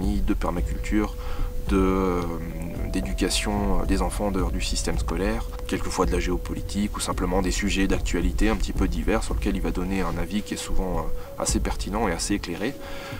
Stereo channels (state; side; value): identical; both; correlation 1.00